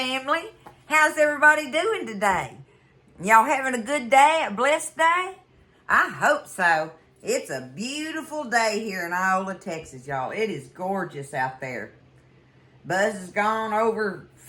How's everybody doing today? Y'all having a good day, a blessed day? I hope so. It's a beautiful day here in Iola, Texas, y'all. It is gorgeous out there. Buzz has gone over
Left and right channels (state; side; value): identical; both; correlation 1.00